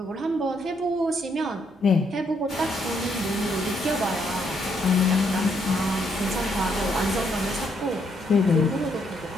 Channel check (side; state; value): both; normal; correlation 0.73